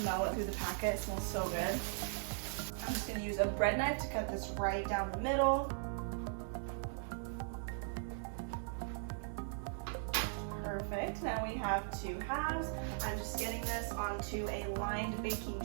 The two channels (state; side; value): silent; left; 52 dB below the other